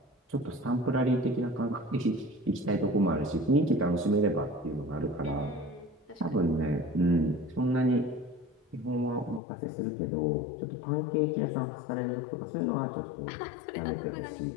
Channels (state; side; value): drops out; right; at 9.4 s